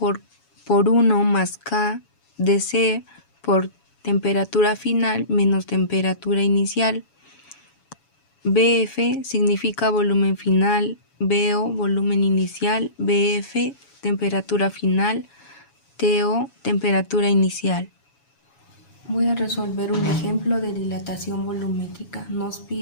1 más K de C por temperatura final menos temperatura inicial. BF significa volumen final, BO volumen inicial, BF temperatura final, TO temperatura inicial. Voy a resolver un ejemplo de dilatación volumétrica. Nos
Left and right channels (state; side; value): late; right; 7.1 ms